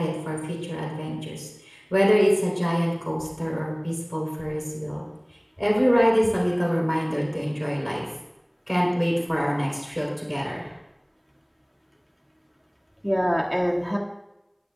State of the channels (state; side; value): identical; both; correlation 1.00